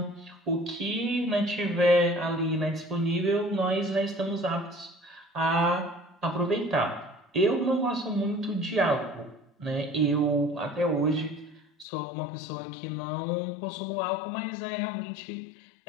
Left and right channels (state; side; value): drops out; right; at 11.9 s